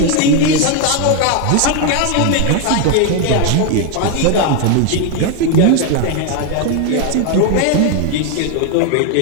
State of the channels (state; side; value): different; both; correlation 0.01